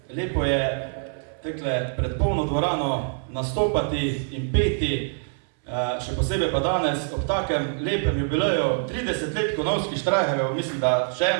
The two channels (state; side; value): silent; left; 62 dB below the other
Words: Lepo je tekle pred polno dvorano nastopati in peti, še posebej pa danes ob takem lepem jubileju 30 let Konavskih Štrajharjev, mislim, da še